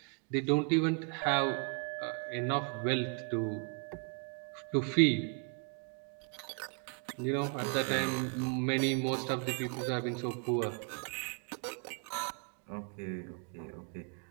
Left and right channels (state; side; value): quieter; left; 36.3 dB